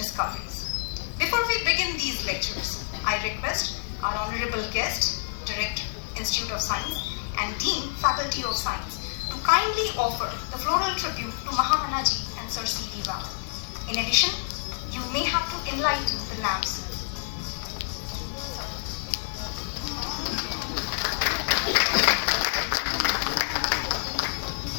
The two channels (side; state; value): right; silent; digital silence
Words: Before we begin these lectures, I request our honorable guest, Director, Institute of Science, and Dean, Faculty of Science, to kindly offer the floral tribute to Mahamanaji and Sir CV Raman. In addition, you may have to enlighten the lamps.